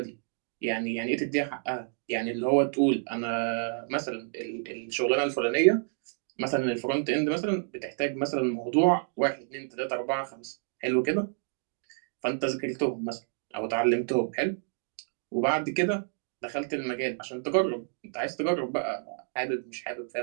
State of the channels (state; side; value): silent; left; digital silence